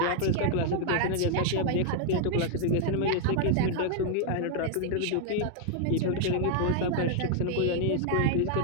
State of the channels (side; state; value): both; different; correlation 0.00